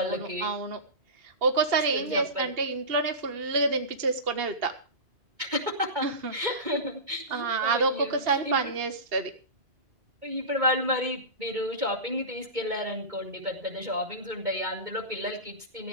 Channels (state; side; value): late; left; 2.2 ms